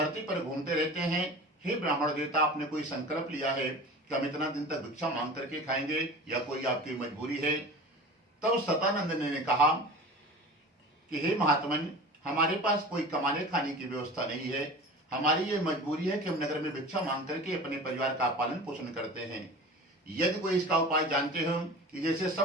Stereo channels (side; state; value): both; normal; correlation 0.37